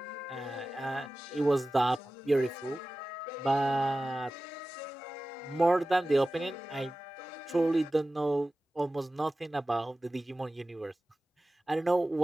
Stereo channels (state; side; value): normal; both; correlation 0.96